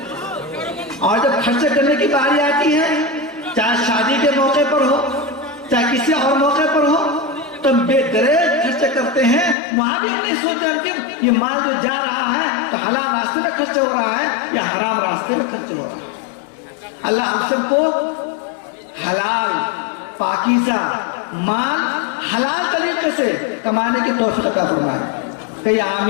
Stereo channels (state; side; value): drops out; right; at 9.6 s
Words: اور جب خرچ کرنے کی باری آتی ہے، چاہے شادی کے موقع پر ہو، چاہے کسی اور موقع پر ہو، تو بے دریغ خرچ کرتے ہیں۔ وہاں بھی ہم نہیں سوچتے کہ یہ مال جو جا رہا ہے تو حلال راستے میں خرچ ہو رہا ہے یا حرام راستے میں خرچ ہو رہا ہے۔ اللہ ہم سب کو حلال پاکیزہ مال حلال طریقے سے کمانے کی توفیق عطا فرمائے، کہیے